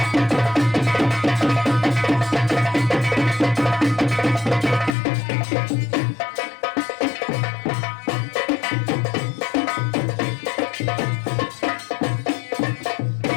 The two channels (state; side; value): drops out; right; at 5.0 s